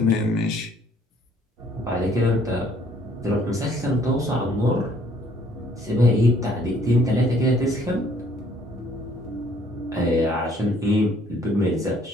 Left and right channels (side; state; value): both; normal; correlation 0.61